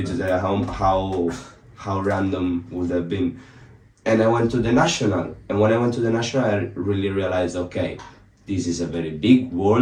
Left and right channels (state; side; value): identical; both; correlation 1.00